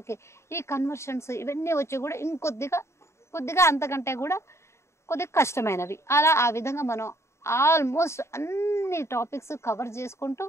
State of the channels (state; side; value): late; right; 0.13 ms